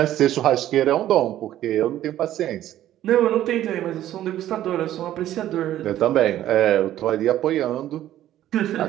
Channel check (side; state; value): left; quieter; 12.8 dB